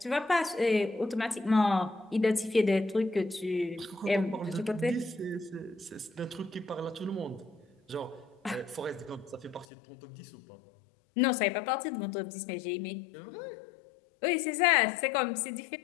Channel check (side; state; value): right; drops out; at 9.7 s